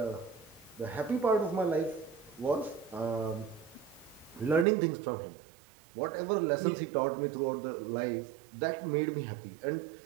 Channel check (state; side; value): drops out; left; at 4.7 s